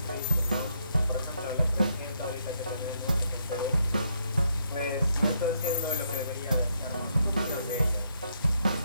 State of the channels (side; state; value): both; inverted; correlation -0.75